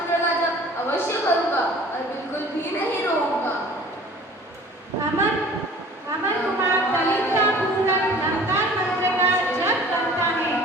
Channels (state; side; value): normal; both; correlation 0.47